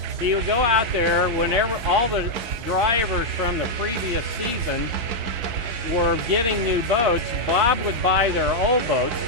He would go out there whenever all the drivers from the previous season were getting new boats. Bob would buy their old boats,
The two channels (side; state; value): left; late; 4.5 ms